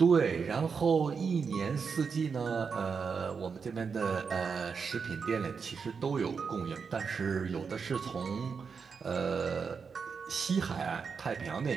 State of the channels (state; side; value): quieter; left; 5.7 dB